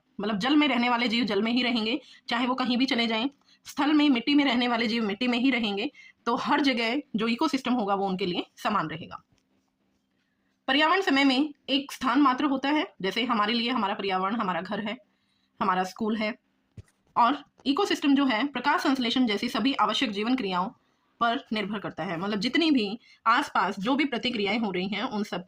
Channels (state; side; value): identical; both; correlation 1.00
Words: मतलब जल में रहने वाले जीव जल में ही रहेंगे, चाहे वो कहीं भी चले जाएं। स्थल में मिट्टी में रहने वाले जीव मिट्टी में ही रहेंगे। तो हर जगह जो इकोसिस्टम होगा वो उनके लिए समान रहेगा। पर्यावरण समय में एक स्थान मात्र होता है। जैसे हमारे लिए हमारा पर्यावरण हमारा घर है, हमारा स्कूल है। और इकोसिस्टम जो है प्रकाश संश्लेषण जैसी सभी आवश्यक जीवन क्रियाओं पर निर्भर करता है। मतलब जितनी भी आसपास जो भी प्रतिक्रियाएं हो रही हैं उन सब